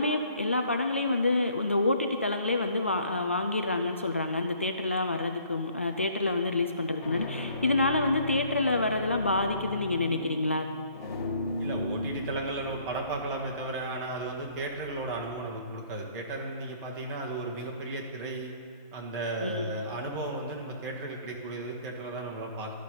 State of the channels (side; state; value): both; inverted; correlation -0.59